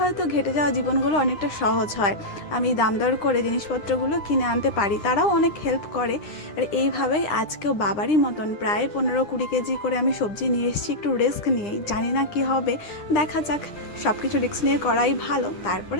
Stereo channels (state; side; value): late; right; 9.8 ms